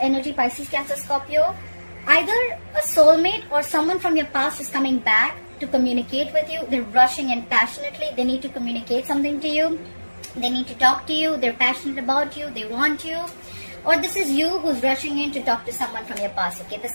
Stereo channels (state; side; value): inverted; both; correlation -1.00